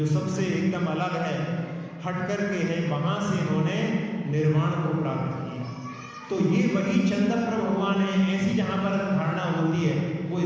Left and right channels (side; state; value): both; identical; correlation 1.00